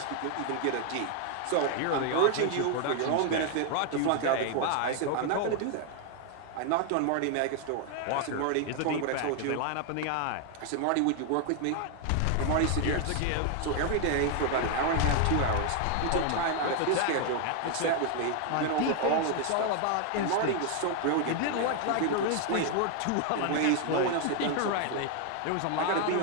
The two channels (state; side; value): different; both; correlation 0.00